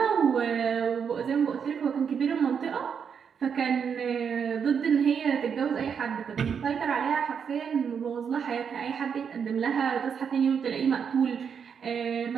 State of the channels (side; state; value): left; quieter; 7.0 dB